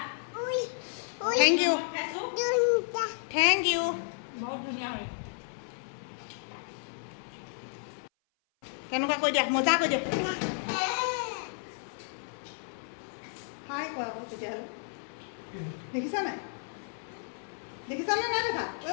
থেংক ইউ থেংক ইউ বহুত ধুনীয়া হয় কেনেকুৱা কৈ দিয়া মজা কৈ দিয়া হাই কোৱা আকৌ তেতিয়াহ'লে দেখিছা নাই দেখিছানে নাই দেখা ঐ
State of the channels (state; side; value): silent; right; 55 dB below the other